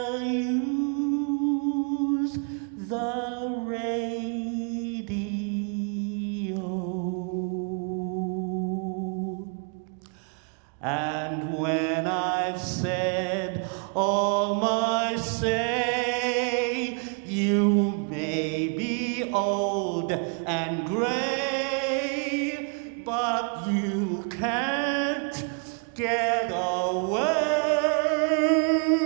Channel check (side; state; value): left; quieter; 39.3 dB